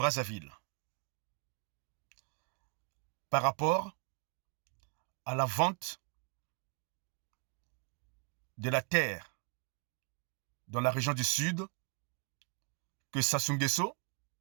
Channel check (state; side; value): quieter; left; 37.0 dB